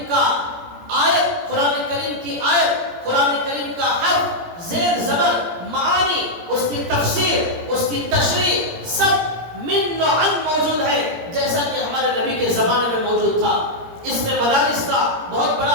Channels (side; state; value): left; late; 17 ms